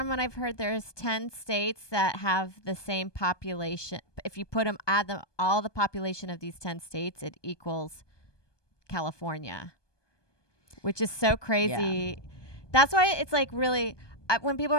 what I've heard, there's 10 states that have the same population. If you add them, all the population of these 10 states, it equals California, which is so crazy. Yeah. That's why it's like really, when people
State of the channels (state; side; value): late; right; 1.2 ms